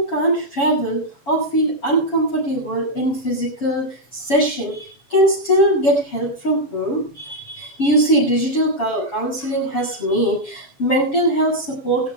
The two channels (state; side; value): late; right; 7.2 ms